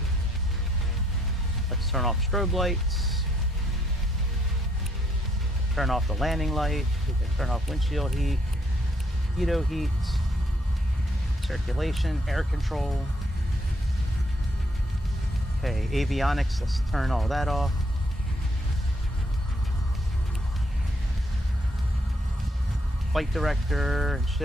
Let's turn off strobe lights. Turn off the landing light. We can turn off windshield heat, heato heat, circulation, air control. Okay, avionics, let's turn all that off. Flight director and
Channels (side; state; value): both; normal; correlation 0.71